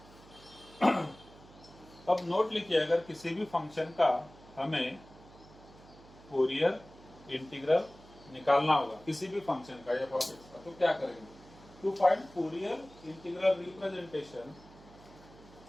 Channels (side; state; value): right; noise; hum, 22 dB below the sound